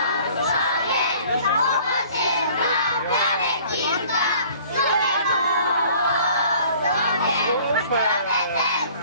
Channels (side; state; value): both; inverted; correlation -0.51